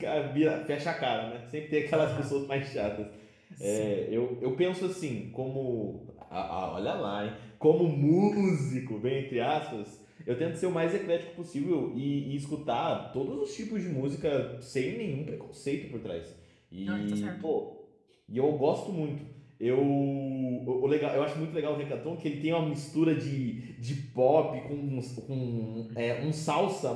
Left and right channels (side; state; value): both; identical; correlation 1.00